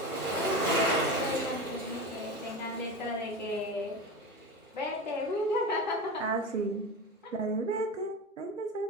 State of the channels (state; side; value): normal; both; correlation 0.25